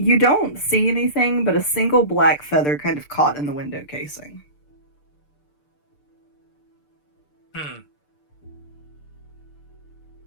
don't see anything but a single black feather kind of caught in the window casing.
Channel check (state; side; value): late; right; 6.7 ms